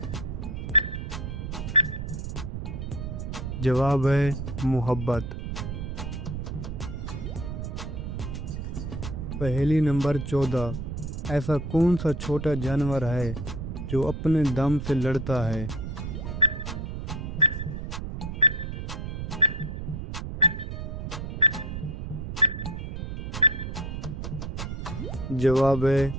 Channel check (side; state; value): right; noise; rumble, 5 dB below the sound